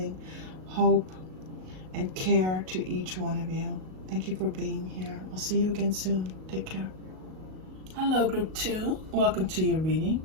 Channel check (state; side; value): late; left; 38 ms